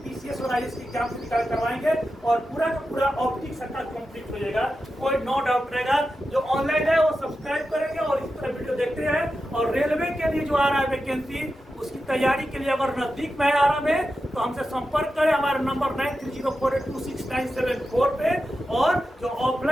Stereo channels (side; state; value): both; normal; correlation 0.90